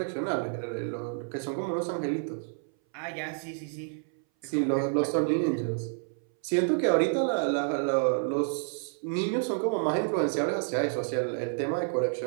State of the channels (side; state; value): left; silent; 58 dB below the other